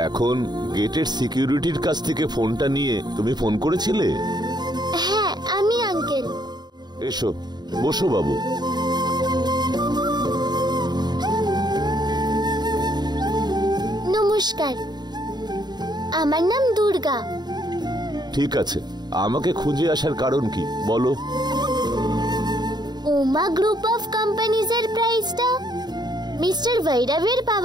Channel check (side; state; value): left; late; 0.20 ms